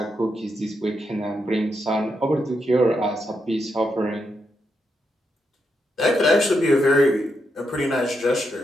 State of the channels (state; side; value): normal; both; correlation 0.83